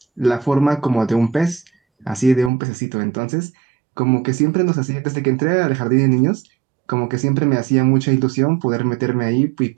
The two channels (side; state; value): left; drops out; at 2.5 s